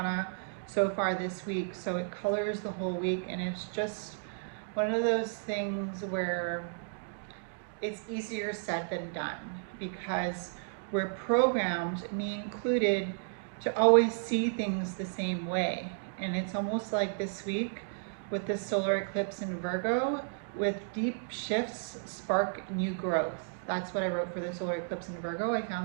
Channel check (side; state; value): left; silent; digital silence